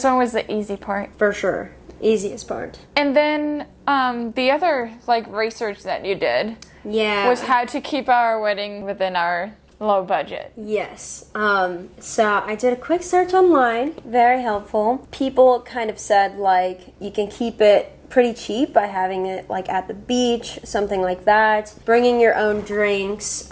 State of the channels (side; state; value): both; identical; correlation 1.00